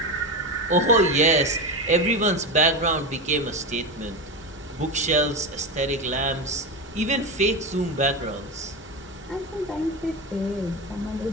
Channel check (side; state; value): both; normal; correlation 0.19